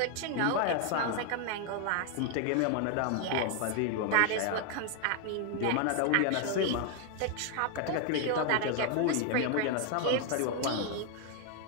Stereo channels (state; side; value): different; both; correlation 0.00